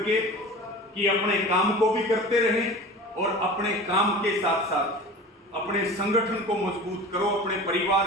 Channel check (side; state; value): both; normal; correlation 0.37